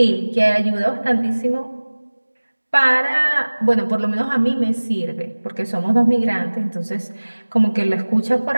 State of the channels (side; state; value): both; inverted; correlation -1.00